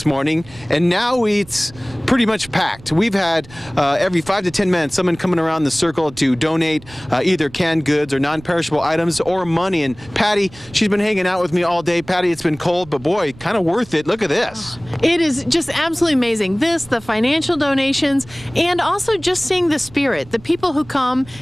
morning, and now it's pretty much packed. We've had every 5 to 10 minutes someone coming around the circle to donate either canned goods or non-perishable items or money. And Patty, she's been hanging out with me all day. Patty, it's been cold, but boy, kind of worth it. Look at this. It is just absolutely amazing. This, the financial donations, and also just seeing the spirit. The people who come,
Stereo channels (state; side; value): noise; right; rumble, 22 dB below the sound